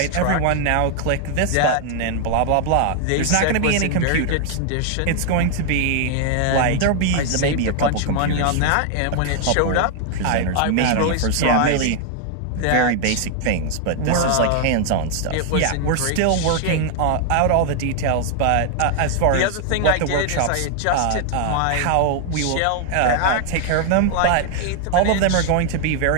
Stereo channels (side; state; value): both; different; correlation 0.00